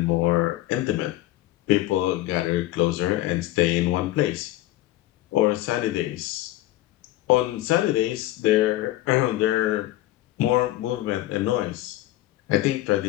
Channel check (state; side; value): quieter; right; 16.0 dB